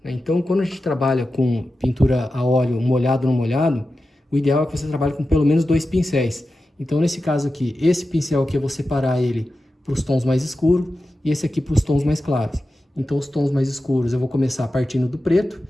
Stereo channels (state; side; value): normal; both; correlation 0.92